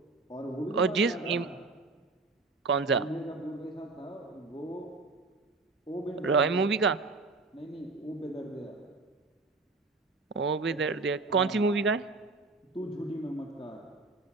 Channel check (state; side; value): quieter; left; 3.7 dB